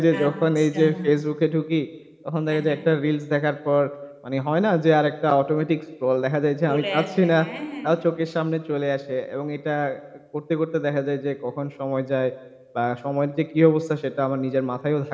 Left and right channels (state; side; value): identical; both; correlation 1.00